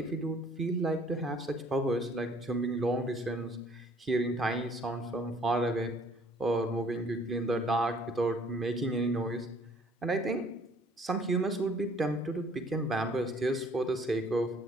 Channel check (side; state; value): both; normal; correlation 0.58